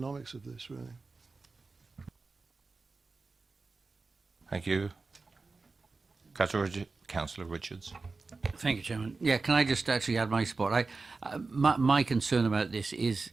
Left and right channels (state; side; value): quieter; left; 4.0 dB